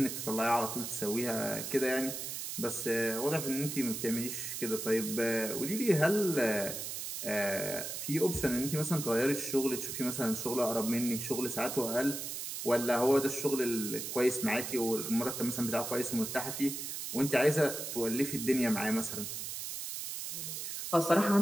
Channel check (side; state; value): right; noise; hiss, 5 dB below the sound